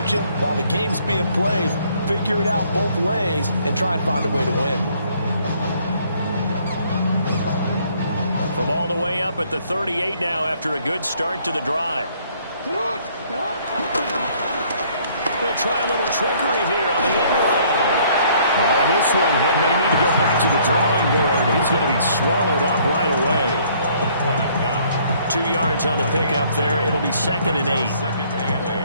you? While the game's being played, figure it out both ways and try and find a way to win. From all the way up at the 38 now after a good start to the drive. They'll try a little trickery here on the end around. Oh, this one may need to go back to the drawing board. He's going to be swallowed up right away. 2 yards on the pickup there. It'll be 2nd and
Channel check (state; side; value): inverted; both; correlation -0.62